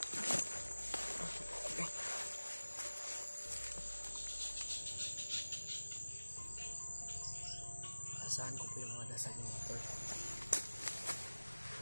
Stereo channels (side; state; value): both; inverted; correlation -1.00